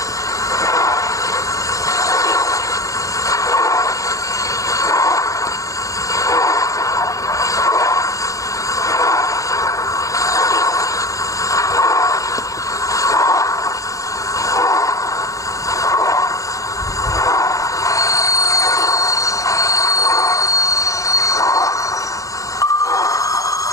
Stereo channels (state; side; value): late; right; 0.16 ms